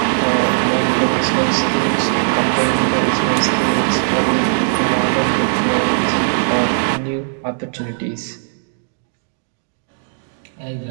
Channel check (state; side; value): silent; left; digital silence